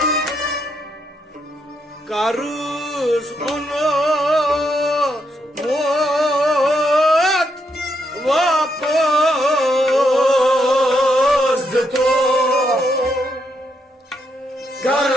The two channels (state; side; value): normal; both; correlation 0.78